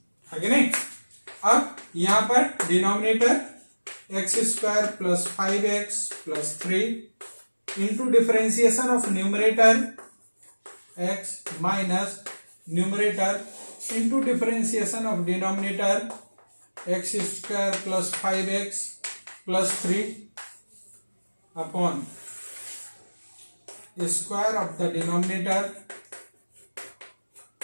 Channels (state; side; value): inverted; both; correlation -1.00